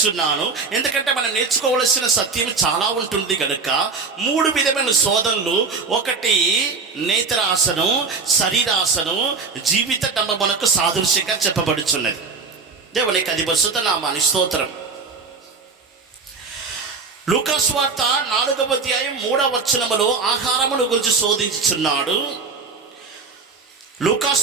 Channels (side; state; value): left; quieter; 4.6 dB